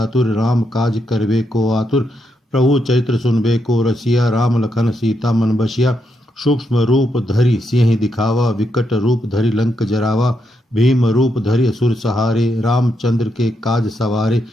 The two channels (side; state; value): both; normal; correlation 0.80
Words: राम काज करबे को आतुर। प्रभु चरित्र सुनबे को रसिया, राम लखन सीता मन बसिया। सूक्ष्म रूप धरि सिंह दिखावा, विकट रूप धरि लंक जरावा। भीम रूप धरि असुर सहारे, रामचंद्र के काज सवारे।